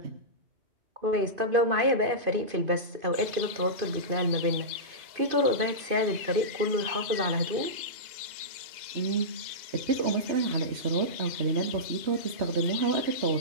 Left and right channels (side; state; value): left; late; 2.5 ms